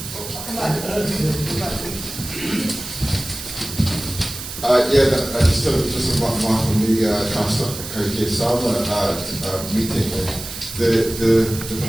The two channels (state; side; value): noise; right; hiss, 10 dB below the sound